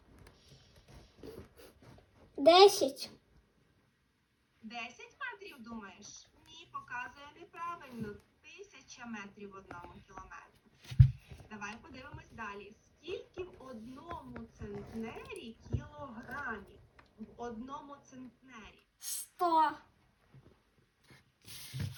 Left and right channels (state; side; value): identical; both; correlation 1.00